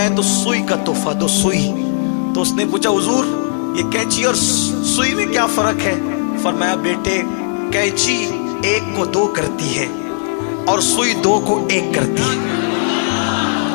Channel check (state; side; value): silent; right; digital silence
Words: ہے تو سوئی کا تحفہ دو، سوئی۔ تو اس نے پوچھا حضور یہ کینچی اور سوئی میں کیا فرق ہے؟ فرمایا بیٹے کینچی ایک کو دو کرتی ہے اور سوئی دو کو ایک کرتی ہے۔